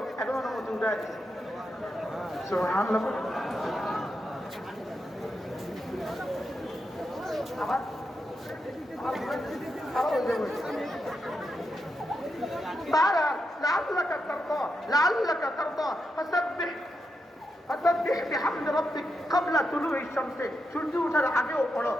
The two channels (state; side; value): normal; both; correlation 0.85